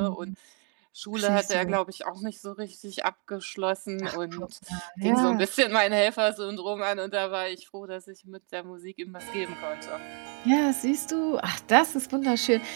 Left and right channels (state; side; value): quieter; left; 38.8 dB